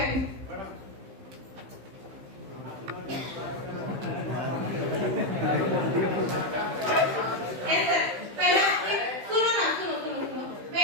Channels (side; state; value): left; late; 15 ms